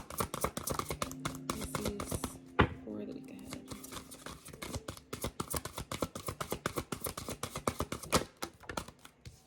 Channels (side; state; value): both; identical; correlation 1.00